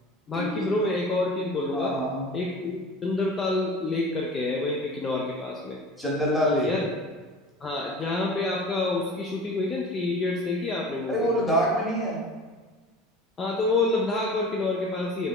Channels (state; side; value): normal; both; correlation 0.39